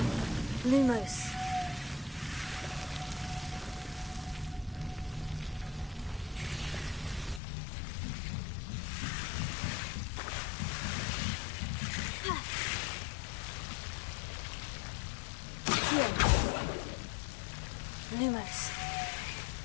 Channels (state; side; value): drops out; right; at 7.4 s